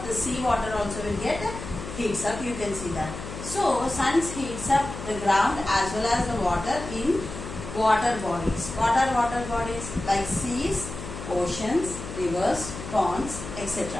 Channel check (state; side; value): noise; left; hum, 10 dB below the sound